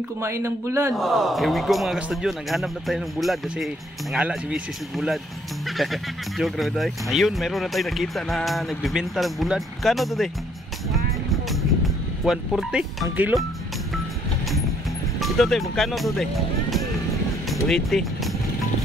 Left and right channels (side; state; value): both; normal; correlation 0.66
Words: kumain ng bulad. Here we go mga kastudyo, naghanap na tayo ng bulad kasi nangala si Mrs. ng bulad. Joke na tayo. Ayun, meron na tayo nakita na nagbibenta ng bulad. Kano to de? 140 ang kilo. Ito de, magkano to de? 280.